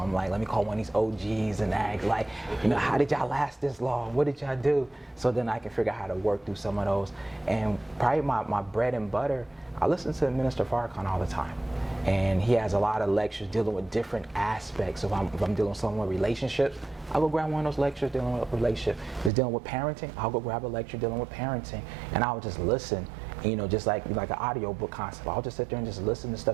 like, let me call one of these OGs and ask, like, you know, how did y'all last this long? What did y'all do? So then I can figure out how to work through some of those. And probably my bread and butter, I listen to Minister Farrakhan all the time. And he has a lot of lectures dealing with different aspects. If I'm dealing with someone with relationships, I'll go grab one of those lectures dealing with relationship. If it's dealing with parenting, I'll go grab a lecture dealing with parenting. And I'll just listen, you know, just like an audio book concept. I'll just sit there and just listen to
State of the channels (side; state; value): left; drops out; at 19.3 s